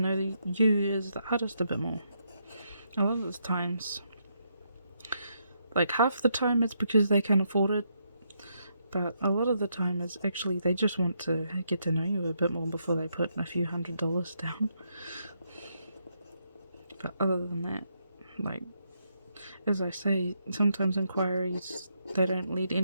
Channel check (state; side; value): inverted; both; correlation -0.78